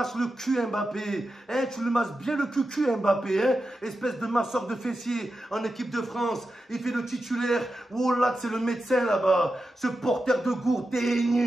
le cul Mbappé. Hein, tu le masses bien le cul Mbappé. Hein, espèce de masseur de fessiers en équipe de France. Il fait le titulaire. Oh là, c'est le médecin là-bas. Ce porteur de gourde, t'es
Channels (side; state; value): both; normal; correlation 0.90